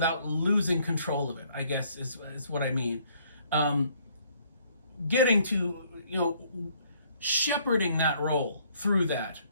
losing control of it, I guess is what I mean. Getting to, shepherding that role through that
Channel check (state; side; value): inverted; both; correlation -0.64